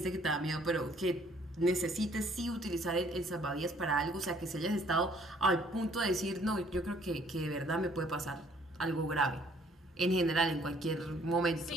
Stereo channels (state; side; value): normal; both; correlation 0.61